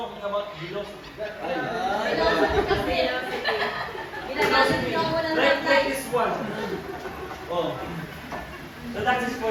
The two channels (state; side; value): identical; both; correlation 1.00